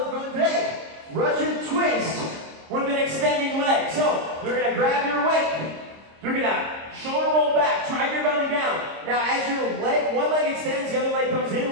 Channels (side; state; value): left; late; 26 ms